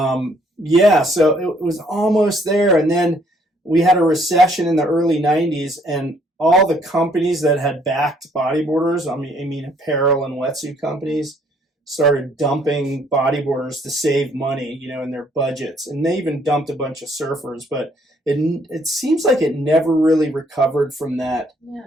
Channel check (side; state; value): both; normal; correlation 0.65